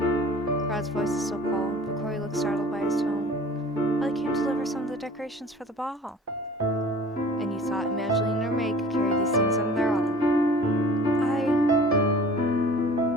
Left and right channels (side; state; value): both; normal; correlation 0.46